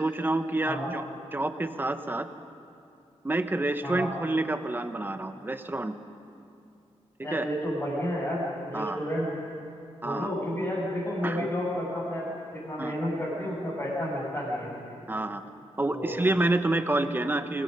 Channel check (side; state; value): both; normal; correlation 0.82